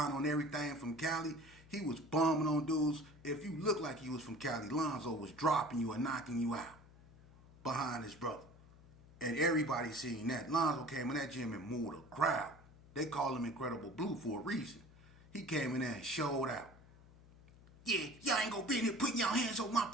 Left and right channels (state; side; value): noise; left; hum, 22 dB below the sound